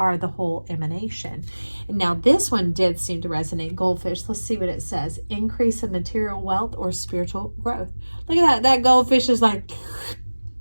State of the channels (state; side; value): inverted; both; correlation -1.00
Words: the whole emanation. And now this one did seem to resonate. Goldfish. Let's see what it says. Increase in material wealth or spiritual growth. Look at that. That goldfish is like...